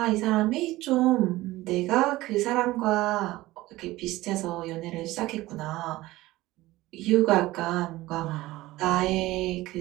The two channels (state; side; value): quieter; left; 17.9 dB